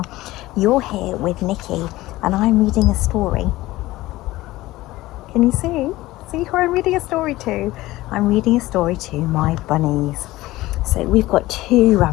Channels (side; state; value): right; quieter; 17.7 dB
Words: You're here with Nicky and I'm reading a story. Can you see? See who I'm reading a story to? I'm reading a story to my bunnies. So we've got two